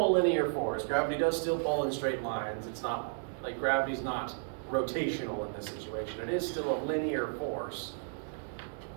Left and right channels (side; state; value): left; silent; digital silence